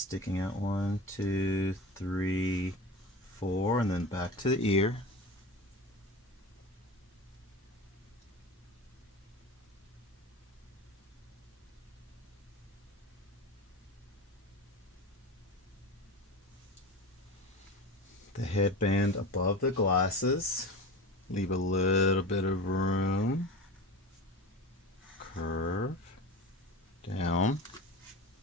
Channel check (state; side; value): normal; both; correlation 0.30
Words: out 1, 2, 3, 4, and then back to the ear. The headband above the glasses. Leave a little bit of room. Curve down.